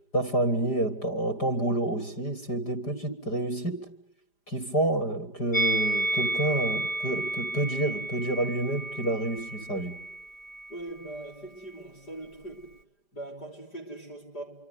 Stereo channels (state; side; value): late; right; 5.0 ms